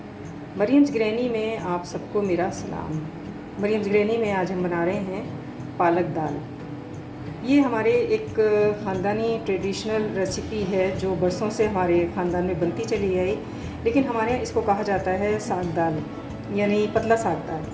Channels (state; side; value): identical; both; correlation 1.00